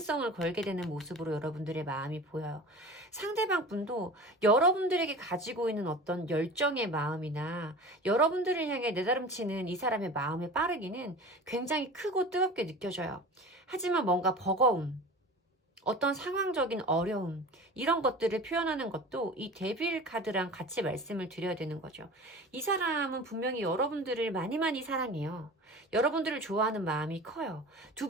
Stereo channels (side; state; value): both; normal; correlation 0.36